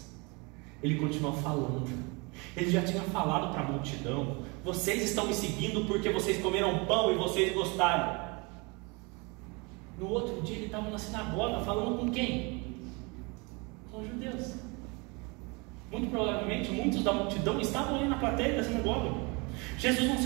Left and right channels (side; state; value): left; quieter; 28.9 dB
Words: Ele continua falando. Ele já tinha falado para a multidão: vocês estão me seguindo porque vocês comeram pão e vocês gostaram. No outro dia ele estava na sinagoga falando com quem? Com os judeus. Muito provavelmente muitos da multidão estavam ali na plateia da sinagoga. Jesus não